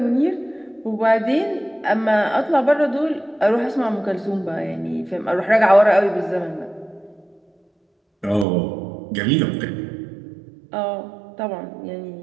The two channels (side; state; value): left; drops out; at 8.5 s